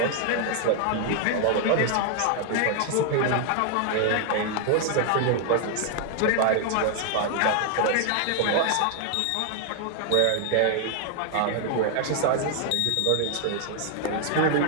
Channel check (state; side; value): different; both; correlation 0.00